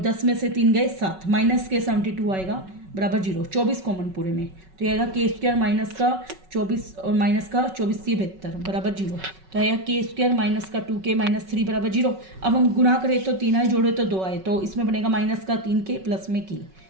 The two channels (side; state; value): left; late; 5.3 ms